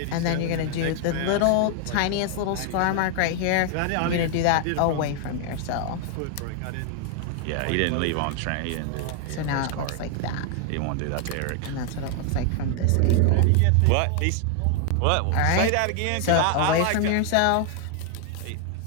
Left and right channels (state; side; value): different; both; correlation 0.00